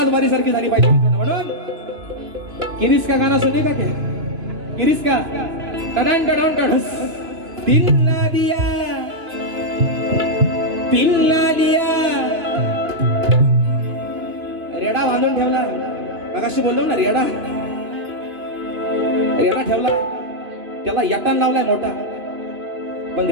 बारी सारखी झाली पाहिजे मित्रांनो. म्हणून किरीस का गाणं सुने का क्या, किरीस का टडन टडन टडस. दिल ना दिया रेडा बांधून ठेवला. मगाशी बोललो ना रेडा ठेवला, त्याला यटान लावलाय मोठा. पण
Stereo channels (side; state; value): left; late; 2.9 ms